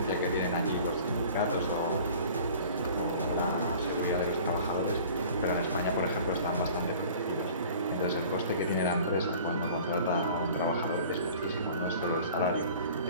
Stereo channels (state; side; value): inverted; both; correlation -0.46